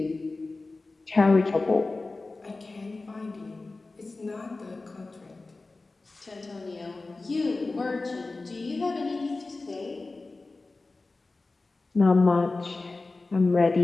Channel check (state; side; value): quieter; right; 3.4 dB